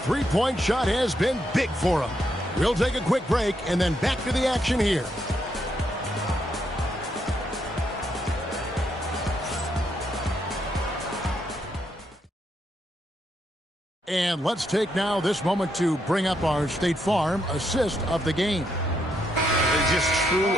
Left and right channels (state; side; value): normal; both; correlation 0.78